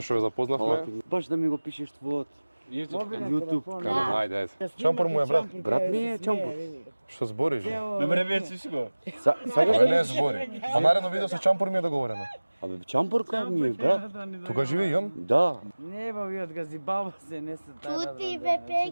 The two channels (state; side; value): inverted; both; correlation -1.00